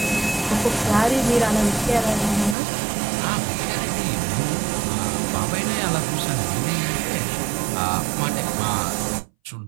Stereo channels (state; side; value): drops out; left; at 2.6 s